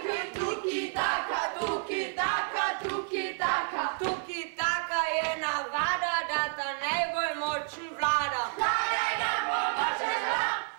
tuki, taka, tuki, taka, tuki, taka. Tuki taka je navada, da ta najbolj močen vlada. Vladaj nam pomoče zla,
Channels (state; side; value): silent; left; 57 dB below the other